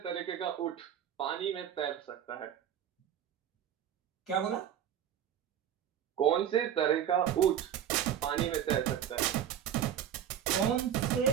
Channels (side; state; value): left; quieter; 9.7 dB